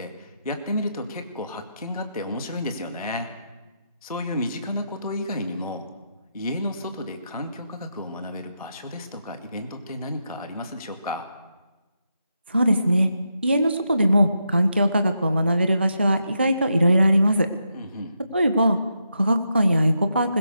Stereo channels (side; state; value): both; inverted; correlation -0.83